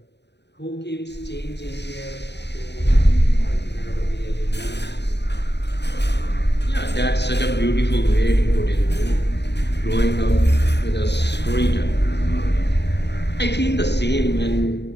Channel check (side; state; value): right; late; 0.50 ms